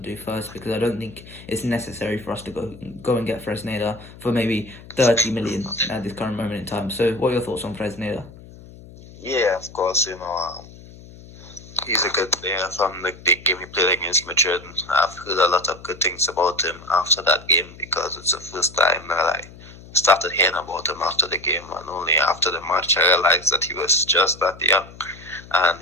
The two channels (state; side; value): noise; left; hum, 19 dB below the sound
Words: do first, because I don't think it's necessary for us to go and get Fresneda for maybe 30 million at this current moment in time. So, what are your thoughts on Fresneda? Yeah, of course, he's a good player from the big game he played against Madrid. I've heard a lot of good things about him after that game, because it's the first time that I started hearing about him after the game, and only after the match I realized that he was just that young. And